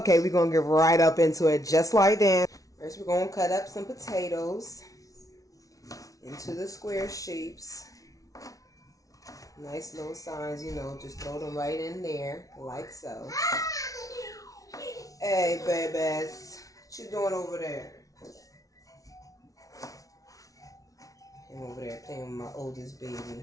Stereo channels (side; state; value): right; late; 0.17 ms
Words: we're gonna get right up into it just like that. First we're gonna cut up some potatoes into the square shapes. Nice little signs, just throw them right in there, like so. Hey, babies, what you doing over there? I'm over there playing with my oldest